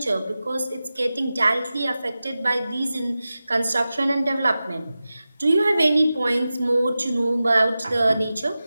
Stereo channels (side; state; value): both; inverted; correlation -0.94